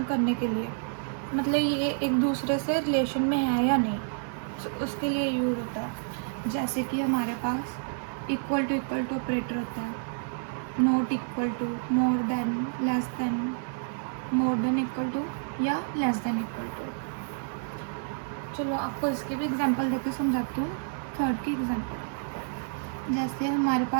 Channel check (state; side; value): silent; left; digital silence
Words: करने के लिए, मतलब ये एक दूसरे से रिलेशन में है या नहीं, उसके लिए यूज़ होता है। जैसे कि हमारे पास इक्वल टू ऑपरेटर होता है, not equal to, more than, less than, more than equal to या लेस देन इक्वल टू। चलो आपको इसके भी एग्जांपल देकर समझाती हूँ। थर्ड की एग्जांपल, जैसे हमारे